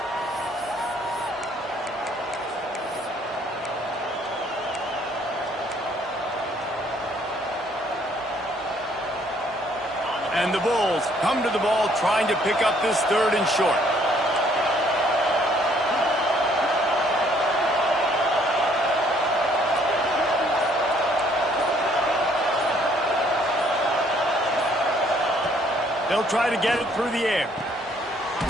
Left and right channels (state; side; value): normal; both; correlation 0.64